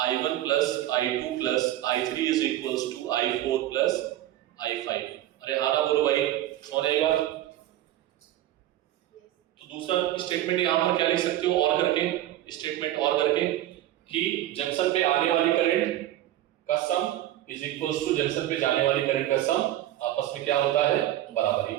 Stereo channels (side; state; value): left; quieter; 13.7 dB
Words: I1 plus I2 plus I3 is equals to I4 plus I5। अरे हाँ ना बोलो भाई, समझ आई बात। तो दूसरा स्टेटमेंट यहाँ पर क्या लिख सकते हो, और करके, स्टेटमेंट और करके, कि जंक्शन पे आने वाली करंट का सम इज इक्वल्स टू जंक्शन पे जाने वाली करंट का सम आपस में क्या होता है, बराबर। ये